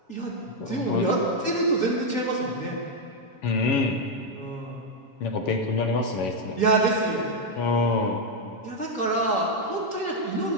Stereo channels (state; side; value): late; right; 7.2 ms